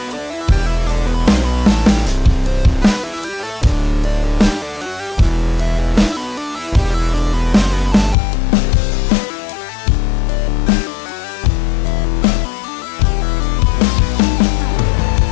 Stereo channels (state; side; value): drops out; right; at 8.2 s